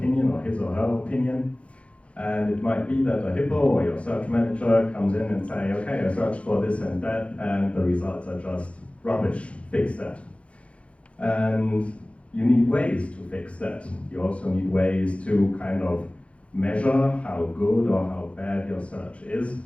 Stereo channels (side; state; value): right; late; 0.062 ms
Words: or his or her opinion. And it might be that a hippo or your search manager comes in and say, okay, I searched for this and that, and the results are just rubbish, fix that. And you need ways to fix that. You also need ways to kind of measure how good or how bad your search is,